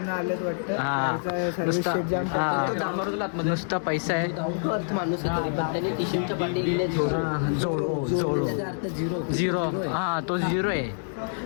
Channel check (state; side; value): silent; right; 60 dB below the other